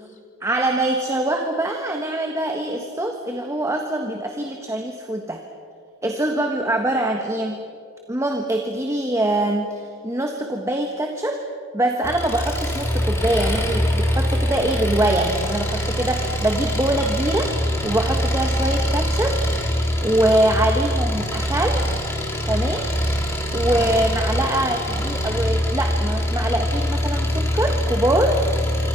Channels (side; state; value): both; normal; correlation 0.67